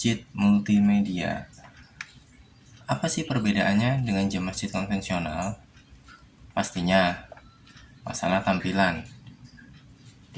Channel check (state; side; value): identical; both; correlation 1.00